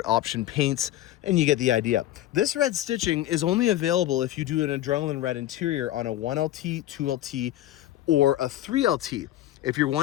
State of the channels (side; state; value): right; quieter; 14.0 dB